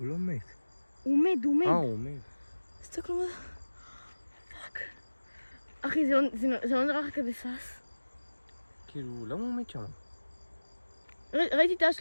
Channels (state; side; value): inverted; both; correlation -1.00